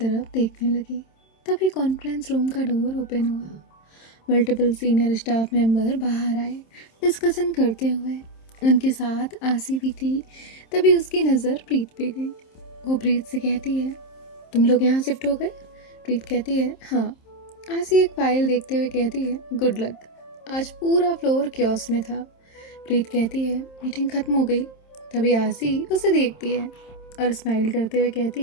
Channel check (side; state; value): right; late; 27 ms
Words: देखने लगी। तभी कॉन्फ्रेंस रूम का डोर ओपन हुआ। मल्टीपल सीनियर स्टाफ मेंबर बाहर आए डिस्कशन करते हुए। उनके साथ आसी भी थी। तभी उसकी नज़र प्रीत पे गई। वो प्रीत से कहती है, तुम लोग यहाँ शिफ्ट हो गए? प्रीत कहती है, हाँ। आसी एक फाइल देखते हुए कहती है, गुड लक। आज पूरा फ्लोर क्योस में था। प्रीत कहती है, मीटिंग ख़त्म हो गई। तभी आसी उसे देखती है और स्माइल करते हुए